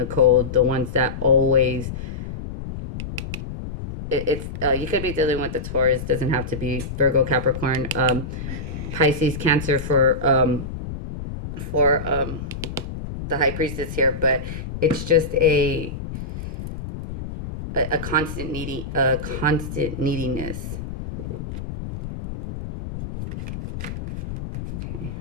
cold. The ones that always... you could be dealing with the Taurus. Doesn't have to be Virgo, Capricorn, Pisces, Cancer for the High Priestess here. But it's just a constant neediness. Okay.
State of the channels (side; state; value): left; noise; rumble, 8 dB below the sound